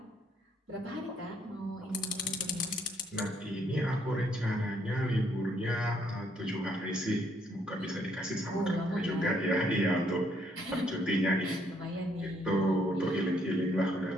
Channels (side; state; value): both; normal; correlation 0.70